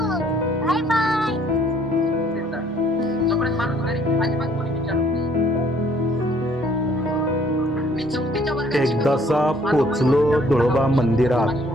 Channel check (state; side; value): normal; both; correlation 0.61